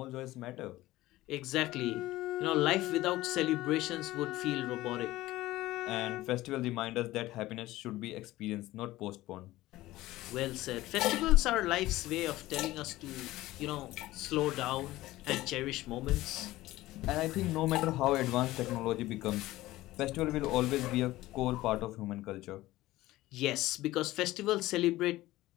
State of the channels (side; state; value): right; quieter; 17.1 dB